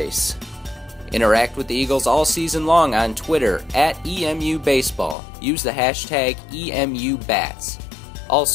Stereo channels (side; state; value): right; drops out; at 5.2 s